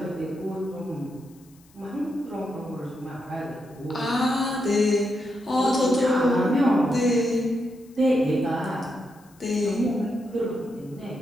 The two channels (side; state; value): left; noise; hiss, 29 dB below the sound